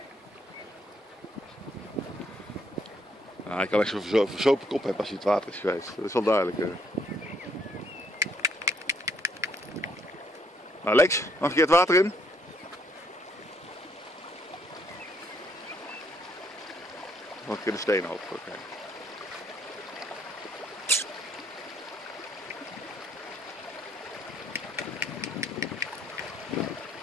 Nou, ik kan echt zo'n verzopen kop hebben als hij het water is geweest. Dat is wel duidelijk. Nou Lex, nog een keer het water in. Nog een keer de stenen op. Okay.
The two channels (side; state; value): both; normal; correlation 0.69